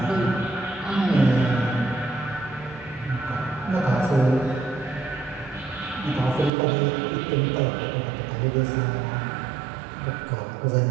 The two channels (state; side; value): drops out; left; at 6.5 s